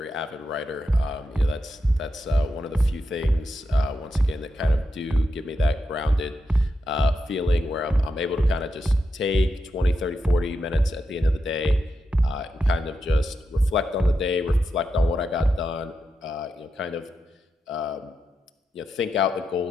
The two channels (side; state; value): both; normal; correlation 0.86